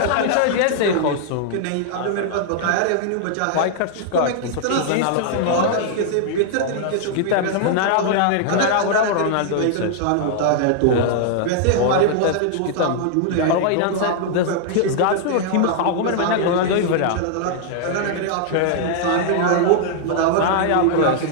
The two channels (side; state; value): both; different; correlation -0.01